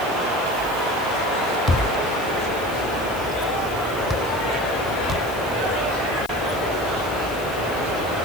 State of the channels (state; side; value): noise; left; hiss, 16 dB below the sound